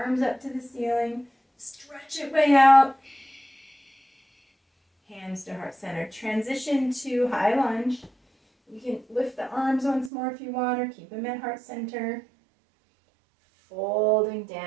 up to the ceiling. Stretch it way out. Hands to heart center. Transition to high lunge. You can lift the arms once more if you want, or keep them at heart center. Folding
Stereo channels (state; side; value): drops out; left; at 10.1 s